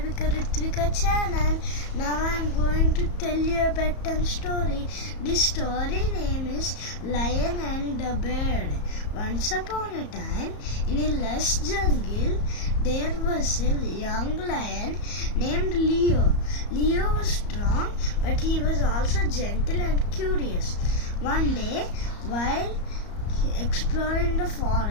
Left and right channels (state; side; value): late; right; 34 ms